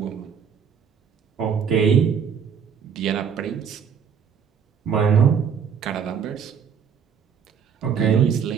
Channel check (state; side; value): quieter; left; 7.1 dB